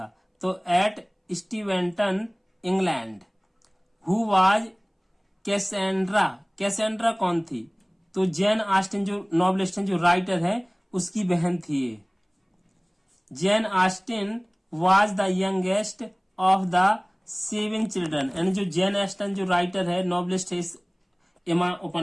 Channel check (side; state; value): both; identical; correlation 1.00